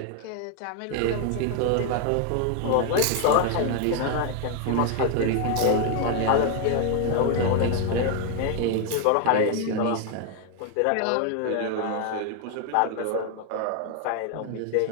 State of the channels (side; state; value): both; different; correlation 0.00